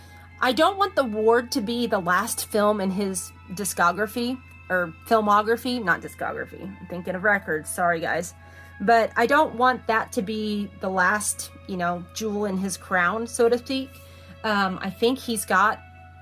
don't want The Ward to be the last film in his discography, or filmography, not discography. I'm thinking of records. Sorry, guys. But I don't want that to be the last, you know, jewel in his crown, so to speak. I think he's got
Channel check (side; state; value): both; identical; correlation 1.00